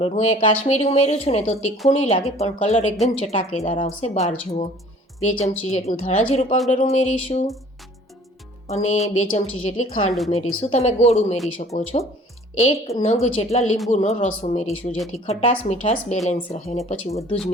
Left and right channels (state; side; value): normal; both; correlation 0.51